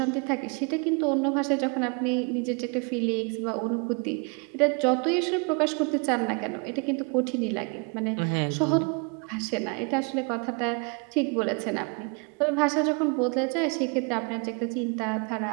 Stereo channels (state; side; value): quieter; left; 34.6 dB